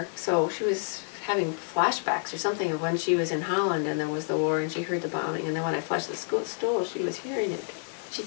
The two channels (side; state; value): right; silent; 59 dB below the other